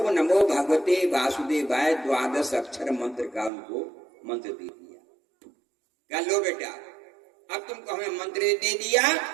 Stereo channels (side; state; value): left; drops out; at 3.5 s